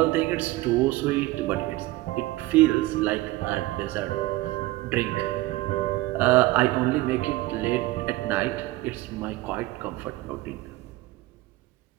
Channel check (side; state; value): left; quieter; 18.7 dB